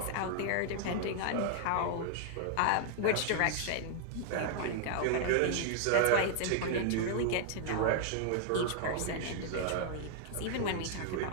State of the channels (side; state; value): both; different; correlation -0.01